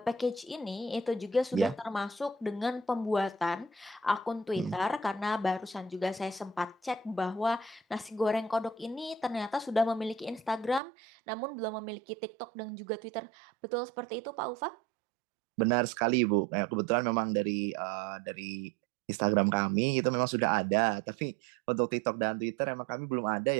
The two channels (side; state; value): left; drops out; at 10.8 s